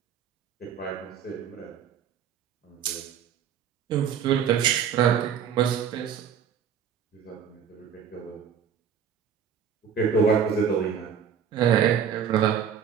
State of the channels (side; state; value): left; quieter; 7.8 dB